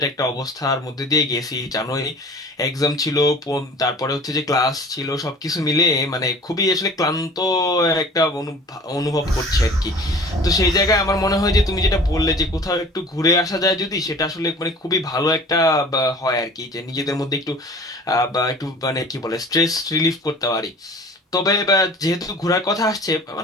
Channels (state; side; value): normal; both; correlation 0.44